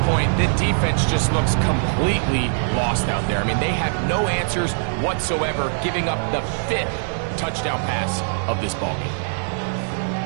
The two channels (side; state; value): left; silent; digital silence